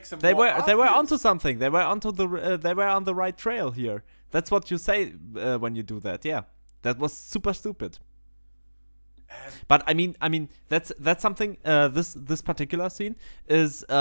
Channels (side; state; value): both; inverted; correlation -1.00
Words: him. They were onto something. They were they were on the right trail here. That's what you say when you do that. Yeah, that was super stupid. But I mean that's something. This particular scene is